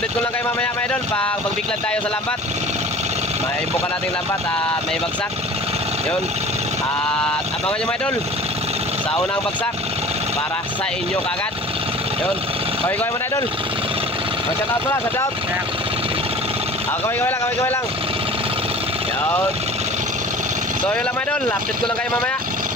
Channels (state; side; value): normal; both; correlation 0.42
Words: ko lang kayo mamaya mga idol pag magbiklad tayo sa lambat. May buka nating lambat at may bagsak. Yun. At abangan nyo mga idol sa unang bagsak para sa inyo kagad. Yun. Kaway-kaway mga idol. Shout out pala, shout out. Kaway-kaway lang. Yun. So, yun lang mga idol. Update ko lang kayo mamaya.